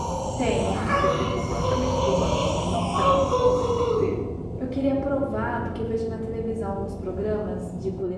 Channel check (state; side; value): identical; both; correlation 1.00